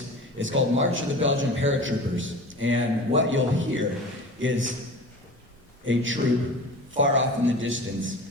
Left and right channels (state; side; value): normal; both; correlation 0.37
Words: It's called March of the Belgian Paratroopers. And what you'll hear is a troop far off in the distance